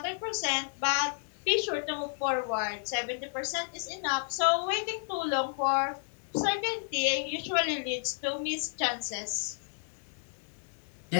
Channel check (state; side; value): silent; right; digital silence